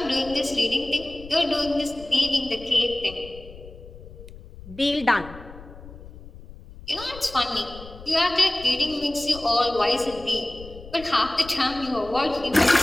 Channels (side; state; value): left; noise; rumble, 17 dB below the sound